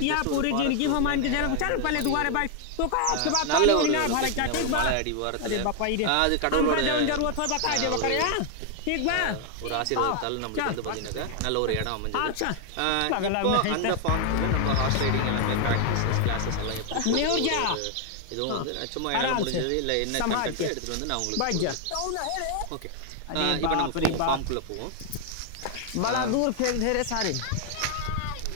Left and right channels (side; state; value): both; different; correlation 0.00